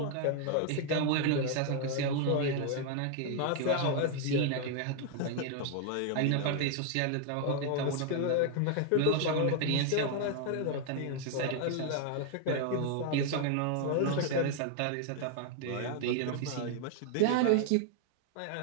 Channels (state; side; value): different; both; correlation 0.00